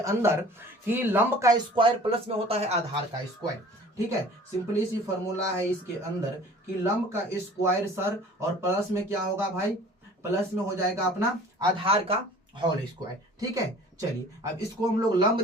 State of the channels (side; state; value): both; normal; correlation 0.47